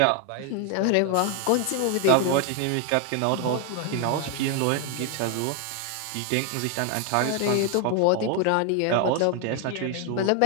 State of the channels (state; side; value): different; both; correlation 0.01